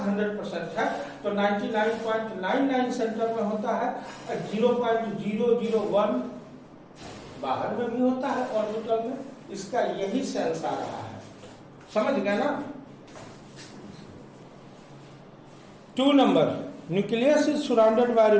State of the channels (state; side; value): identical; both; correlation 1.00